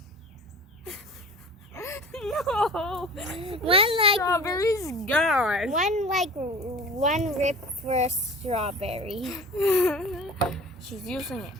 No, strawberry's gone. One rip for a strawberry. She's using it.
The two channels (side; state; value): both; normal; correlation 0.40